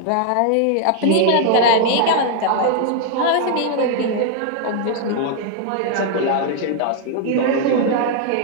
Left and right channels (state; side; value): different; both; correlation 0.00